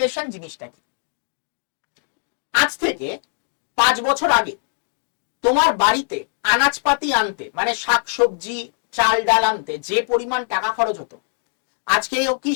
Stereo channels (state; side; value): silent; right; digital silence